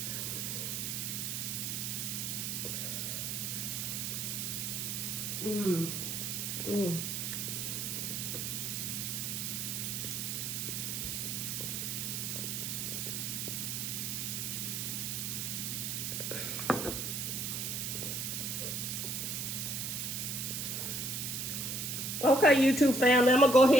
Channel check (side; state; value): right; noise; hiss, 2 dB below the sound